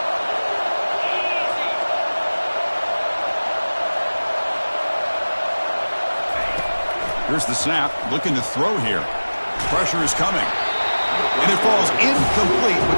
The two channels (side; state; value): both; inverted; correlation -1.00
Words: Here's the snap. Looking to throw here. Pressure is coming. And it falls incomplete